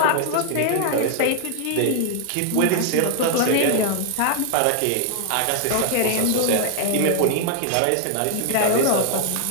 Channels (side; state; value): both; different; correlation 0.00